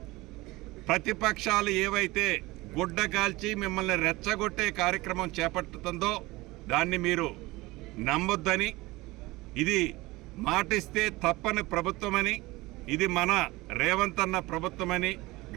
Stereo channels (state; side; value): quieter; left; 20.9 dB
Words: ప్రతిపక్షాలు ఏవైతే గుడ్డ కాల్చి మిమ్మల్ని రెచ్చగొట్టే కార్యక్రమం చేపట్టుతుందో దాన్ని మీరు నమ్మొద్దని, ఇది మాటిస్తే తప్పని ప్రభుత్వమని, ఇది మన రేవంత్ అన్న ప్రభుత్వమని